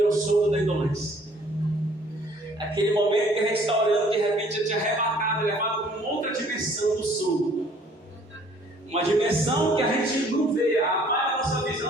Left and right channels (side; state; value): both; normal; correlation 0.58